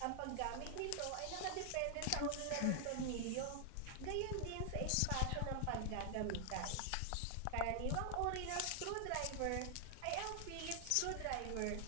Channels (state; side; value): different; both; correlation 0.00